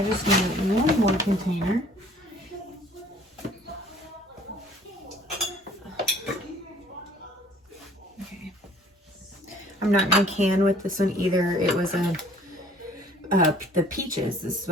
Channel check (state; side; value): normal; both; correlation 0.54